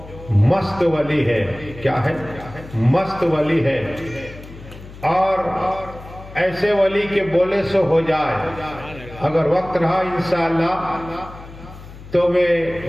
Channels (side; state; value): left; noise; hum, 16 dB below the sound